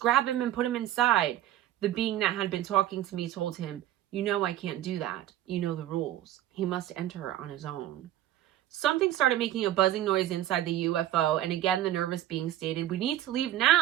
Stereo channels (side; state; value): left; quieter; 12.8 dB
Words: him and put him inside." The being that had been talking to me told him, "You know I can't do that. You know the rules. He must enter on his own." Something started making a buzzing noise inside the UFO, and again the nervous being stated, "We need to leave